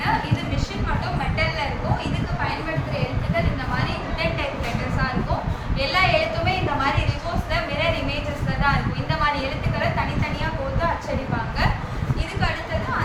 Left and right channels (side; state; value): both; identical; correlation 1.00